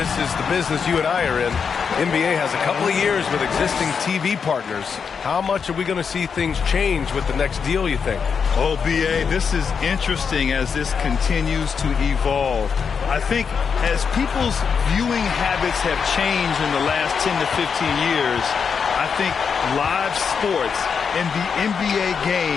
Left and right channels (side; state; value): right; quieter; 6.2 dB